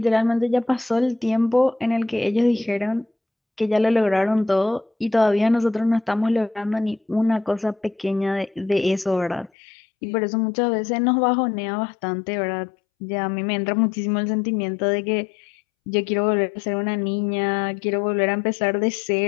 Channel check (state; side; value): drops out; right; at 9.5 s